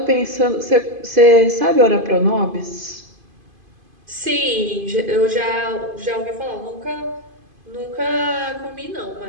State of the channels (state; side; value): late; left; 2.5 ms